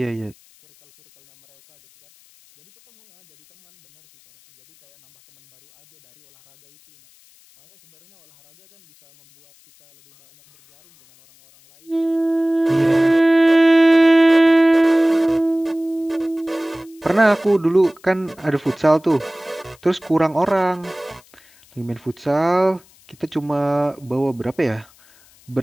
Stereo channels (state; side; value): noise; left; hiss, 30 dB below the sound